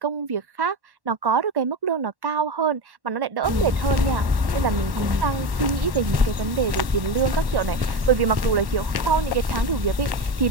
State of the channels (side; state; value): left; late; 1.1 ms